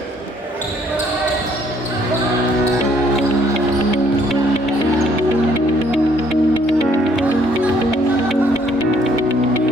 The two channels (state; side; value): normal; both; correlation 0.65